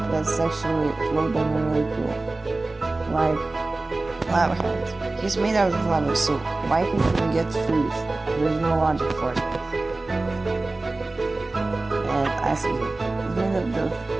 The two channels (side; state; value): left; quieter; 3.2 dB